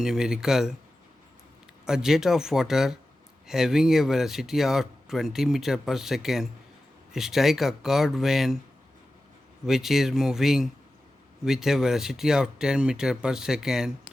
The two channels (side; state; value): both; normal; correlation 0.94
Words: numerical. A jet of water having a velocity of 20 meter per second strike a curved vane which is moving with a velocity of 10 meter per second.